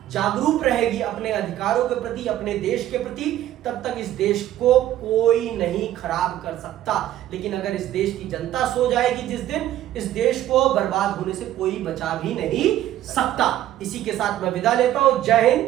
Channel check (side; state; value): left; quieter; 13.0 dB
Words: जागरूक रहेगी अपने अधिकारों के प्रति, अपने देश के प्रति, तब तक इस देश को कोई नहीं खराब कर सकता। लेकिन अगर इस देश की जनता सो जाएगी जिस दिन, इस देश को बर्बाद होने से कोई बचा भी नहीं सकता। इसी के साथ मैं विदा लेता हूं। जय